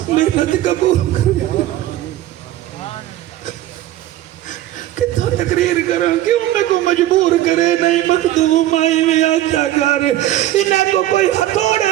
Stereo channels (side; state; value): left; quieter; 14.1 dB